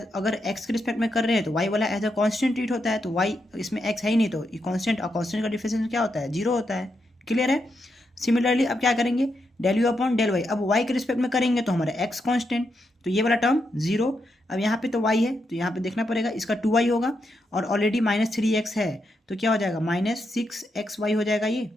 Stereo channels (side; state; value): both; normal; correlation 0.83